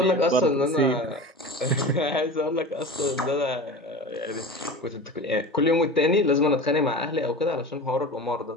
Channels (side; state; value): both; normal; correlation 0.32